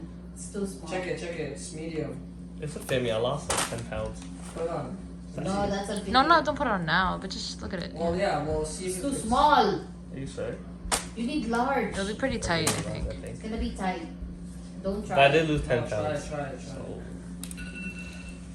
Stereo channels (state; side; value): identical; both; correlation 1.00